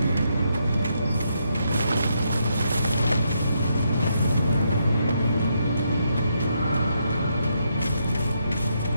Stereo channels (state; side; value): inverted; both; correlation -0.79